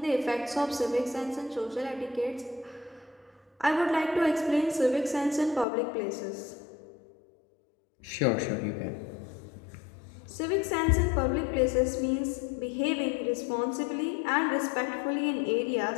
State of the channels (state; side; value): drops out; right; at 5.7 s